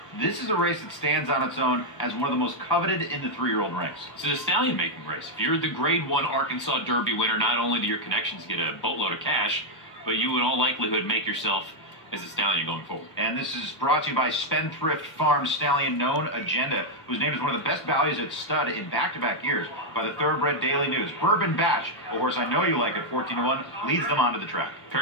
this is a race that stands on its own as one of the most coveted in the 3-year-old ranks. It's a stallion-making race. If you're the Grade 1 Arkansas Derby winner, not only do your connections get a boatload of cash, but you in all likelihood make yourself as a stallion going forward. And this is brought to you by Spendthrift Farm Stallion Known Agenda, who's named as one of the best values at stud in back-to-back years by the Thoroughbred Daily News. Bourbon Batch, a horse I know you like at 14-1, leads them onto the track.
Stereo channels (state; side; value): late; right; 1.1 ms